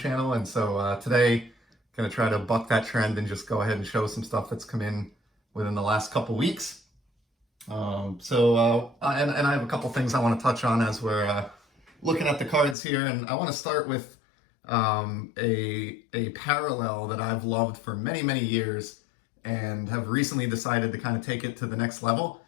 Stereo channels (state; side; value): drops out; right; at 12.8 s